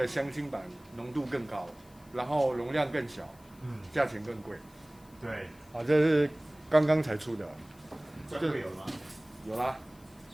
香精版浓度更高，然后容量更小，价钱更贵。对，这是刚刚才出的。专柜有吗？有啦，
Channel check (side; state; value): left; noise; hiss, 27 dB below the sound